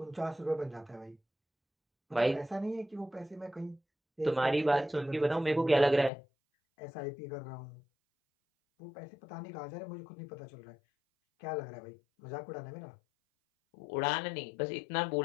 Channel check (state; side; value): drops out; right; at 6.1 s